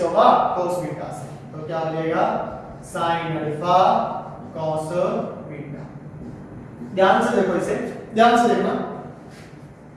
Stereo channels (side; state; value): both; identical; correlation 1.00